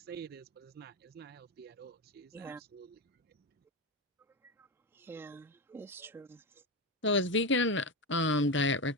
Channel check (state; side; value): normal; both; correlation 0.16